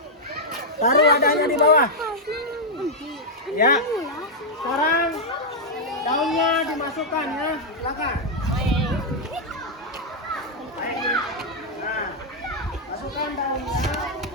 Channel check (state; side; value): normal; both; correlation -0.03